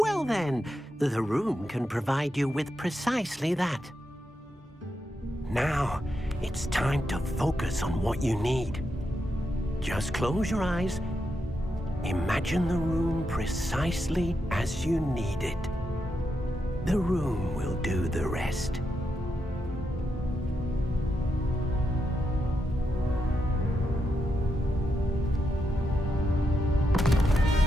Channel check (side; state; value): both; normal; correlation 0.84